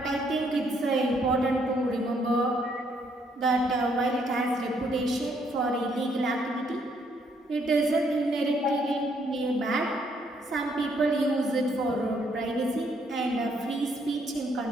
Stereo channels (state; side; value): normal; both; correlation 0.70